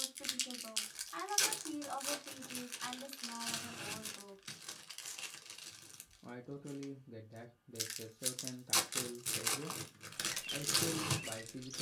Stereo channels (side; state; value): both; identical; correlation 1.00